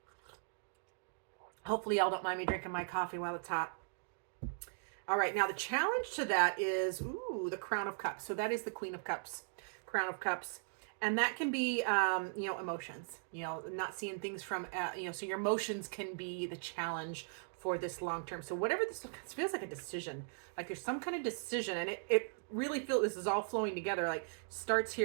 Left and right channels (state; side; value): silent; left; digital silence